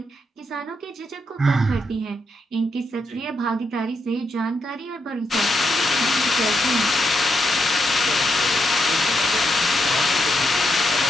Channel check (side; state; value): both; normal; correlation 0.81